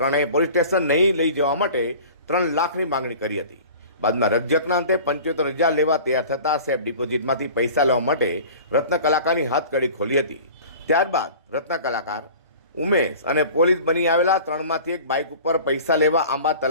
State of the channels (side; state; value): both; inverted; correlation -0.41